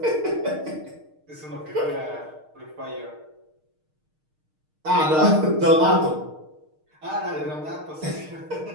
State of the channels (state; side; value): late; left; 6.5 ms